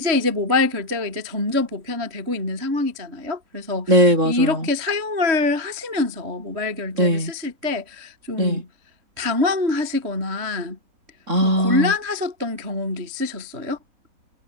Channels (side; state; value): left; late; 3.1 ms